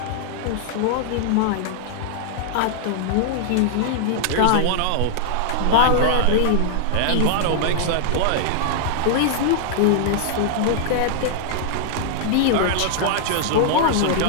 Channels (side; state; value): both; different; correlation -0.01